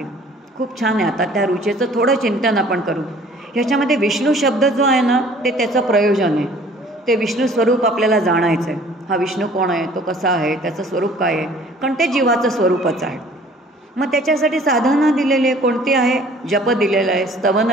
खूप छान आहे. आता त्या ऋचेचं थोडं चिंतन आपण करू. ह्याच्यामध्ये विष्णू शब्द जो आहे ना ते त्याचं प्रयोजन आहे. ते विष्णू स्वरूप आपल्याला जाणायचं आहे. हा विष्णू कोण आहे, तो कसा आहे, त्याचं स्वरूप काय आहे, कारण ते जीवाचं स्वरूपच आहे. मग त्याच्यासाठी साधनं दिलेली आहे. कोणती आहे? जप दिलेलं आहे, स्तवन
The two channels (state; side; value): normal; both; correlation 0.52